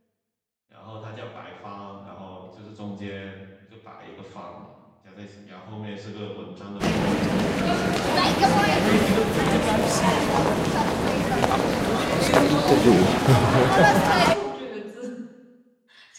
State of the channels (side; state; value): both; identical; correlation 1.00